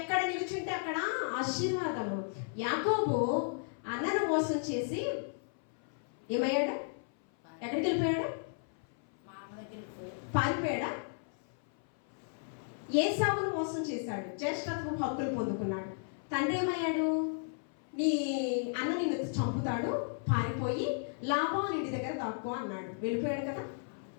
నిలుచుంటే అక్కడ ఆశీర్వాదము. యాకోబు అన్నను మోసం చేసి ఏమయ్యాడు? ఎక్కడికి వెళ్ళిపోయాడు? పారిపోయాడా? ఏసావును మోసం చేశాడు, జ్యేష్ఠత్వం హక్కులు పొందుకున్నాడు. తండ్రి ఏమయ్యాడు? నీ అన్న నిన్ను చంపుతాడు, పారిపోయి లాబాను ఇంటి దగ్గర దాక్కో అన్నాడు. వెళ్ళిపోయాడు కదా.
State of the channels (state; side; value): silent; right; 55 dB below the other